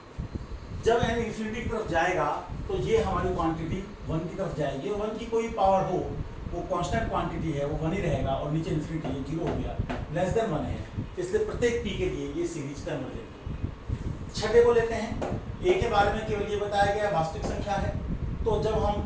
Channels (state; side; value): identical; both; correlation 1.00